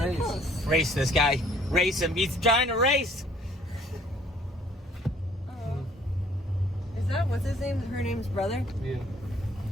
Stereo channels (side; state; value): both; normal; correlation 0.59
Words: close. Race this guy. Race him. He's trying to race. Oh. Is that what's his name? Her name's brother. Yeah.